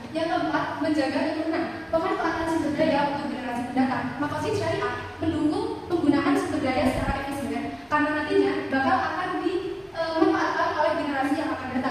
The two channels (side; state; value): both; identical; correlation 1.00